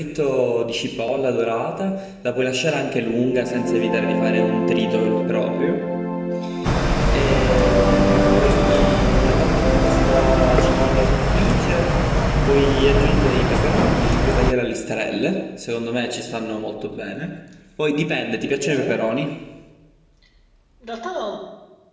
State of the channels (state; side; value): identical; both; correlation 1.00